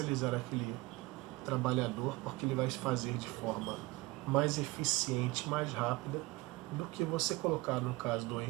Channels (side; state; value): left; quieter; 21.5 dB